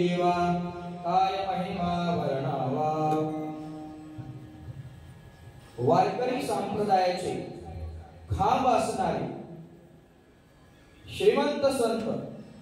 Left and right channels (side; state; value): both; identical; correlation 1.00